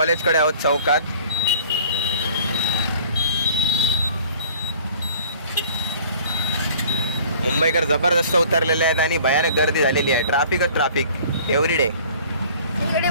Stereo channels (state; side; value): inverted; both; correlation -0.49